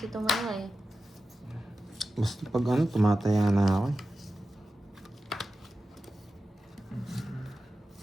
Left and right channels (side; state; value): both; normal; correlation 0.93